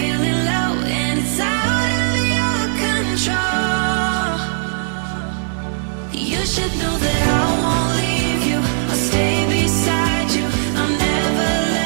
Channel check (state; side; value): silent; left; digital silence